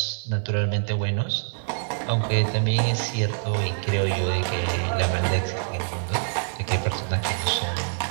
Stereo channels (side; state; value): left; silent; 61 dB below the other